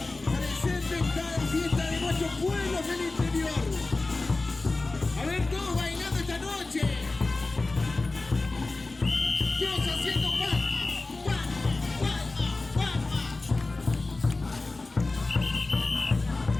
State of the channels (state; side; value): quieter; right; 3.3 dB